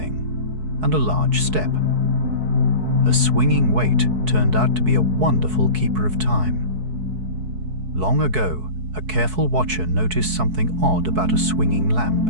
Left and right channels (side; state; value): left; late; 4.6 ms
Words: and a large step. A swinging weight turned out to be a wonderful keeper of time. Long ago, a careful watcher noticed something odd about a swinging lamp.